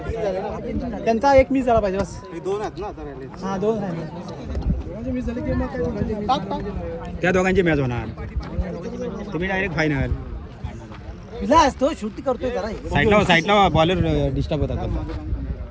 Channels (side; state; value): both; identical; correlation 1.00